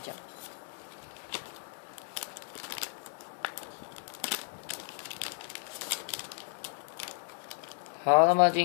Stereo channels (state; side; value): silent; right; 55 dB below the other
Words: 好，那么